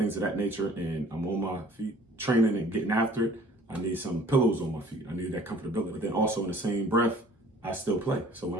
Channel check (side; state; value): both; normal; correlation 0.52